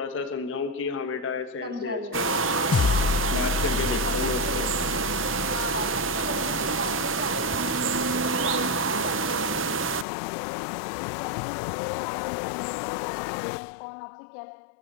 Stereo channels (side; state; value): right; drops out; at 10.1 s